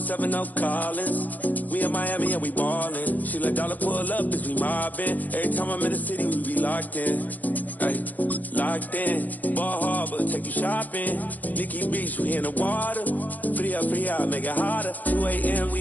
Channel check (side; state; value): right; late; 0.082 ms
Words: Collins. We in Miami and we ballin'. She let dollar pull up as we mobbin'. Every time I'm in the city, we be locked in. Ay, locked in. Ball Harbor, take you shopping. Nikki Beach, we in the water. Free up, make it hotter. 2 a.m.,